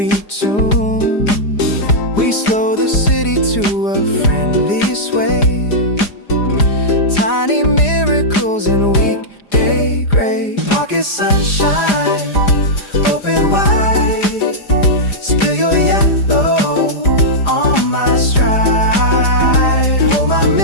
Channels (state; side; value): late; right; 4.9 ms